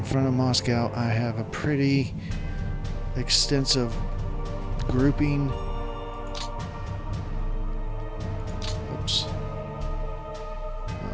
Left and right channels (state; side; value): identical; both; correlation 1.00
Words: front of Moscow, I have a pretty extensive grouping. Oops.